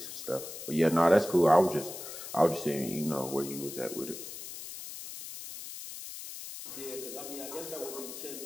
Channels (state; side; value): noise; left; hiss, 10 dB below the sound